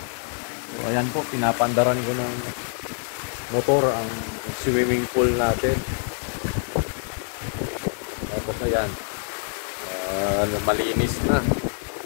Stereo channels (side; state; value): right; silent; 62 dB below the other